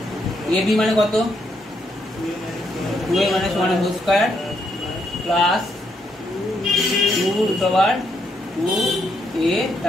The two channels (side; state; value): both; normal; correlation 0.76